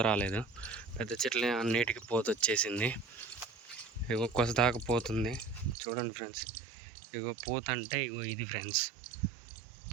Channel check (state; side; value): drops out; left; at 5.8 s